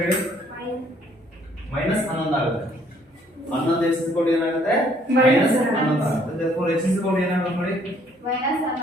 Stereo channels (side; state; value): both; normal; correlation 0.63